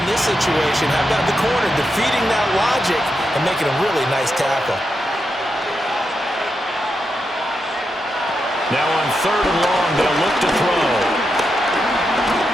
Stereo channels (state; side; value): normal; both; correlation 0.85